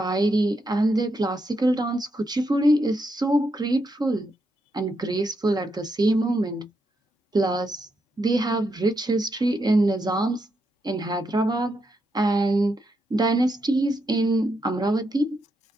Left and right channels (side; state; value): both; normal; correlation 0.81